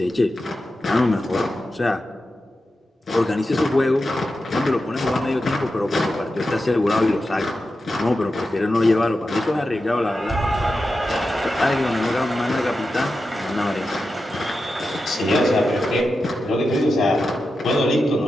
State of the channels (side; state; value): both; normal; correlation 0.90